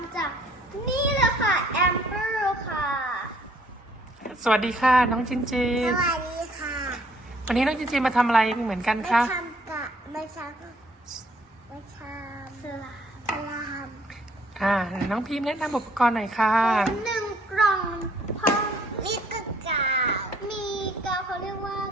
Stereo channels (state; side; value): normal; both; correlation 0.62